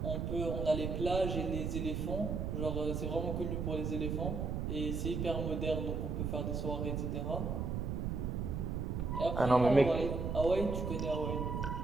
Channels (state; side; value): noise; right; rumble, 1 dB below the sound